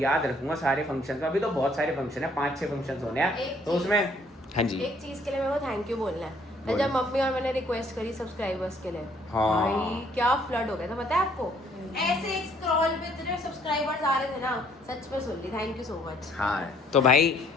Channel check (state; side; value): normal; both; correlation 0.63